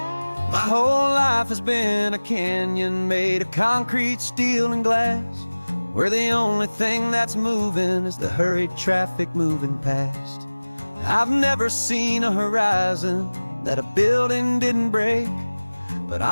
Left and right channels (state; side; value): inverted; both; correlation -1.00